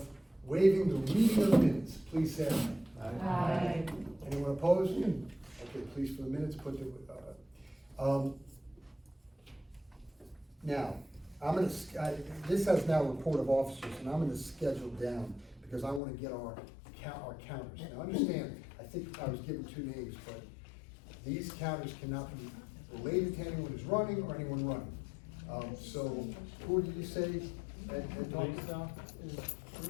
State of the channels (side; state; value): right; drops out; at 16.0 s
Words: waiving the reading of the minutes, please say aye. Aye. Anyone opposed? Okay, please, for the minutes, put the, now, this has now report of officers, and I'm gonna schedule down, because I wanna get our counters. Now, understand, I think I was given two names, but these counters cannot be related to anyone who's running or anyone running. So, who did you say? Ed Thompson? Lisa is,